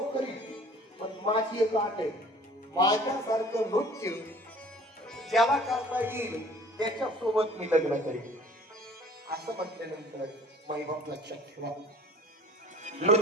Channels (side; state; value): both; normal; correlation 0.50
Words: करील, पण माझी एक अट आहे, माझ्यासारखं नृत्य ज्याला करता येईल त्याच्यासोबत मी लग्न करेन. असं म्हटल्यानंतर मायबाप लक्षात ठेवा,